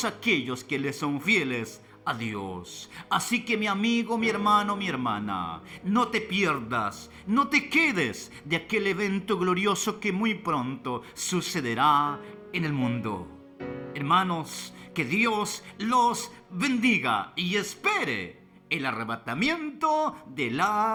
aquellos que le son fieles a Dios. Así que mi amigo, mi hermano, mi hermana, no te pierdas, no te quedes de aquel evento glorioso que muy pronto sucederá en el mundo. Hermanos, que Dios los bendiga y espere el arrebatamiento de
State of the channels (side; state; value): both; identical; correlation 1.00